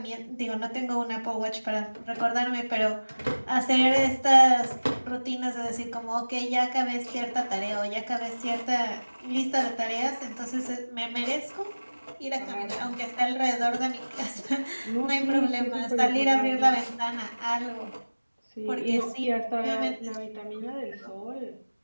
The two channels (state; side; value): inverted; both; correlation -1.00